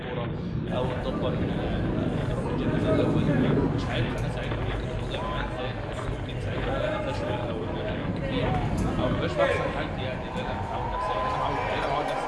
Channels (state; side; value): identical; both; correlation 1.00